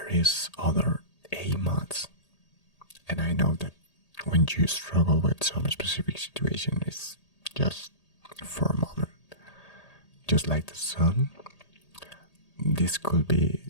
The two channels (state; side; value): late; right; 1.8 ms